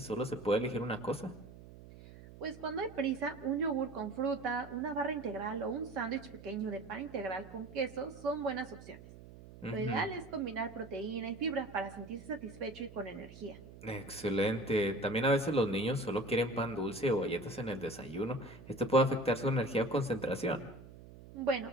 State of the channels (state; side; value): noise; right; hum, 17 dB below the sound